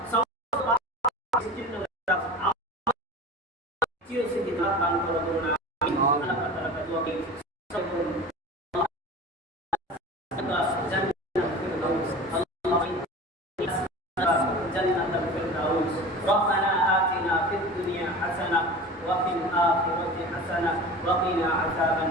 দান করো করুন আমিন। আল্লাহ তাআলা কা দুআ করি জান্নাতুল ফিরদাউস। রব্বানা আতিনা ফিদ দুনিয়া হাসানাহ ওয়া ফিল আখিরাতি হাসানাহ ওয়া কিনা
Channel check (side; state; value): both; normal; correlation 0.35